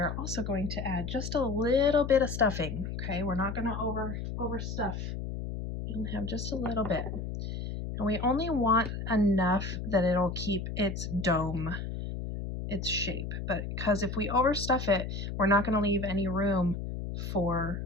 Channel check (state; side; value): noise; left; hum, 5 dB below the sound